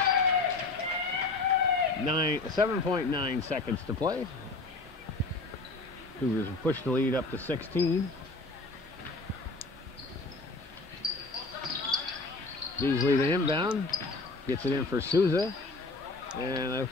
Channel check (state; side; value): quieter; right; 3.4 dB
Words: 7.9 seconds to play. Cougars have pushed the lead up to 16. Beasley the inbound. Gets it in for Souza. And it